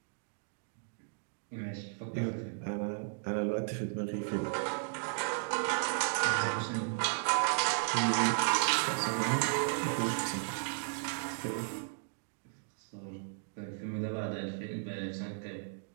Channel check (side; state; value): left; silent; digital silence